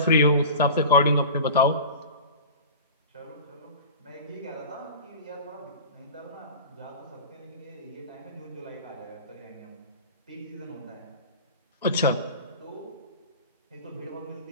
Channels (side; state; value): both; inverted; correlation -0.35